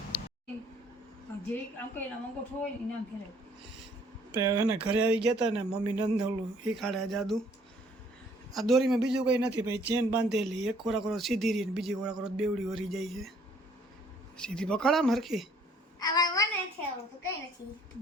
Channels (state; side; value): normal; both; correlation 0.61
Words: એને ઘરે આવી ગયા હતા ને મમ્મી નંદોલું શીખાડે જાદુ. આ દોરીમાં બીજું કંઈ નથી ભાઈ. ચેન બાંધેલી એક ખોરાક સીધી રહી ને બીજી ખોરાક બેવડી વરી જાય છે. સીધી પકડામ હરખી